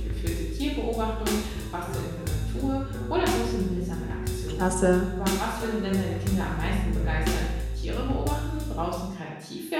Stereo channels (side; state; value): both; identical; correlation 1.00